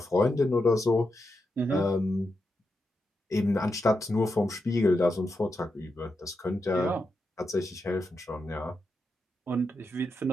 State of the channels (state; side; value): normal; both; correlation 0.86